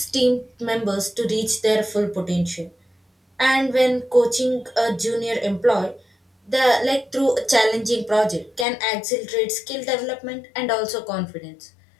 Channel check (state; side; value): drops out; right; at 8.7 s